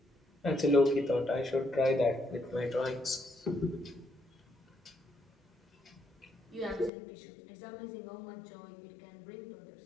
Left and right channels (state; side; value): drops out; right; at 6.9 s